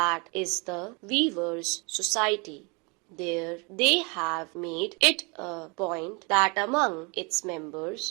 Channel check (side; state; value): left; quieter; 30.5 dB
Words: is the Weavers Society. There they have made it a point that among its